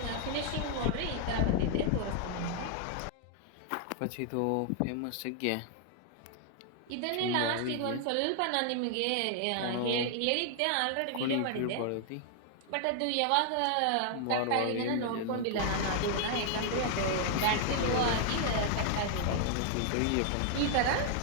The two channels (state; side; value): different; both; correlation 0.00